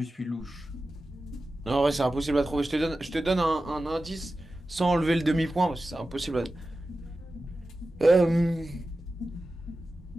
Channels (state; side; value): normal; both; correlation 0.94